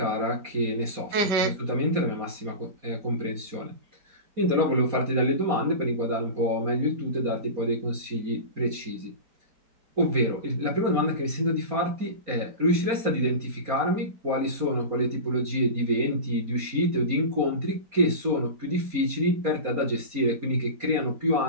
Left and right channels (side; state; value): left; late; 4.2 ms